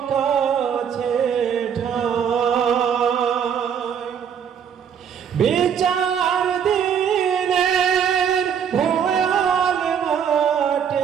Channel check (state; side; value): quieter; left; 8.0 dB